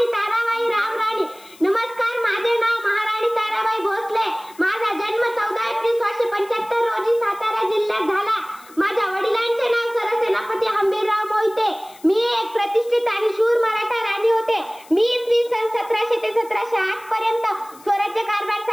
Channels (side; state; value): left; noise; hiss, 24 dB below the sound